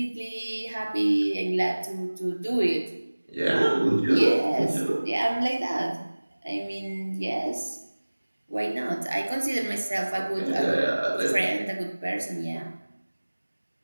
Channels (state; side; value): inverted; both; correlation -1.00